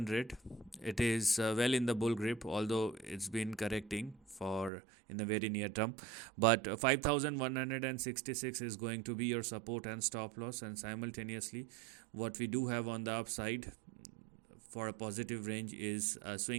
it is well in the bull grip, although it's been correcting for in the very near term. But 5,166 is going to be your support and stop loss, and simultaneously, what we do have on the upside for a positive range is a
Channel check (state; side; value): drops out; left; at 4.7 s